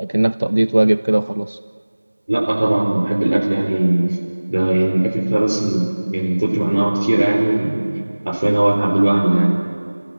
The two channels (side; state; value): both; inverted; correlation -1.00